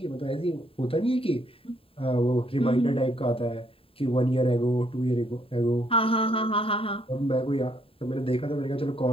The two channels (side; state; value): right; late; 0.27 ms